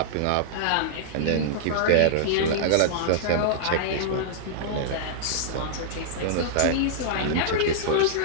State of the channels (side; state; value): both; different; correlation -0.02